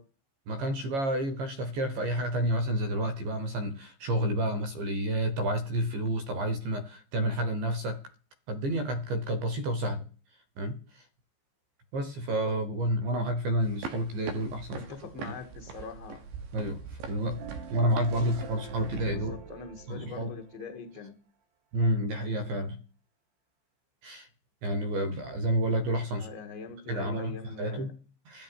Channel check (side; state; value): left; late; 15 ms